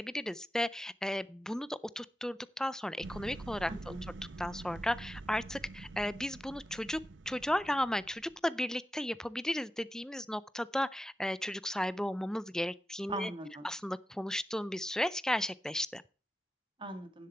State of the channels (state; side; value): normal; both; correlation 0.91